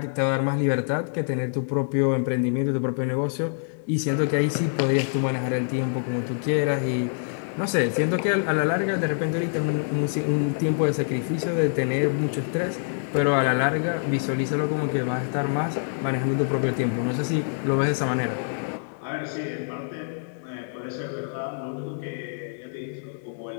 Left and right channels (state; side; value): silent; right; digital silence